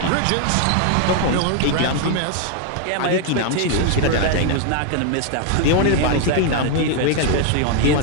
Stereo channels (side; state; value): both; different; correlation 0.00